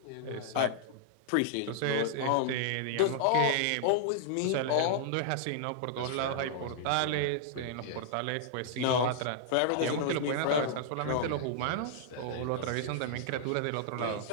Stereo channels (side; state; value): both; different; correlation -0.01